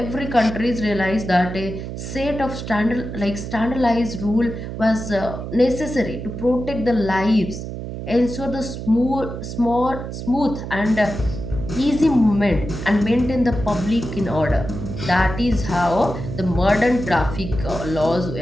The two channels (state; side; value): noise; right; hum, 7 dB below the sound